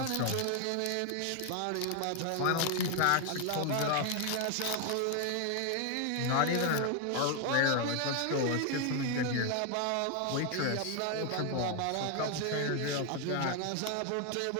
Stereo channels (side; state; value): both; different; correlation 0.00